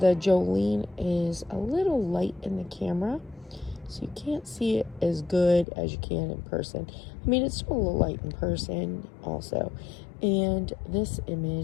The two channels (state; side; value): drops out; right; at 5.7 s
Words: Jolene is a little light in the camera, so you can't see it as good as you can in person. I mean, it's still a little light in person also. And this